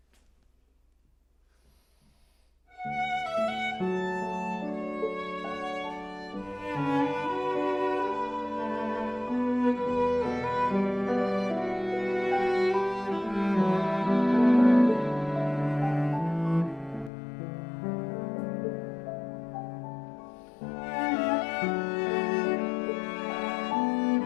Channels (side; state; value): right; drops out; at 17.1 s